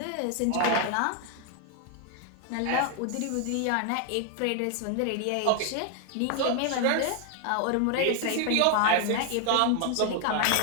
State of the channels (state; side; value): different; both; correlation 0.00